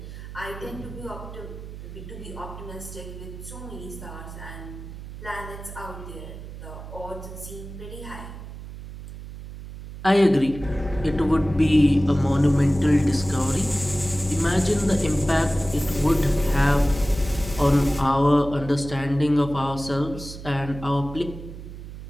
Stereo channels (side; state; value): right; noise; hum, 12 dB below the sound